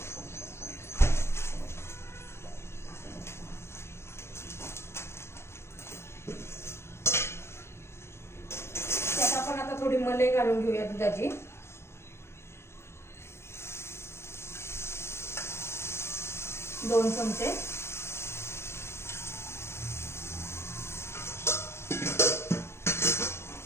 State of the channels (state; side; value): late; right; 0.12 ms